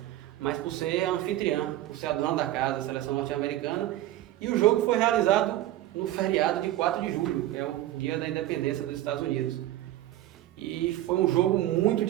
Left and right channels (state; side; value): quieter; left; 14.3 dB